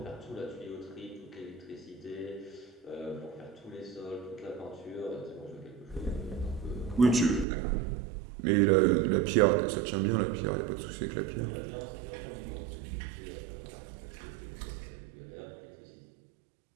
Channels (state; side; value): drops out; left; at 7.5 s